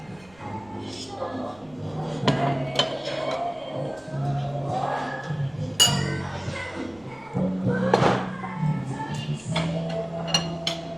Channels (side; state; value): right; noise; rumble, 27 dB below the sound